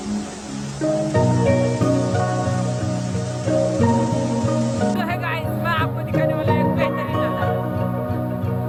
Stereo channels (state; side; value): identical; both; correlation 1.00